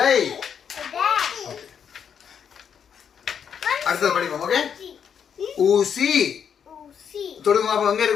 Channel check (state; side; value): quieter; right; 7.7 dB